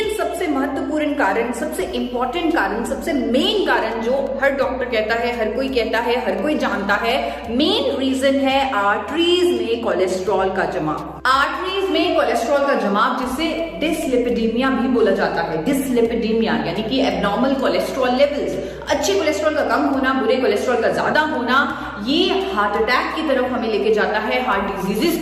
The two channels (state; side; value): identical; both; correlation 1.00